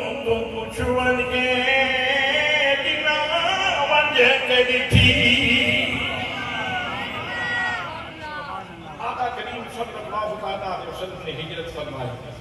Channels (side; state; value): both; identical; correlation 1.00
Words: تو کچھ ورگے جنا وجہ کے دکھی. آقا کریم صلی اللہ تعالیٰ علیہ وسلم نے ہجرت فرمائی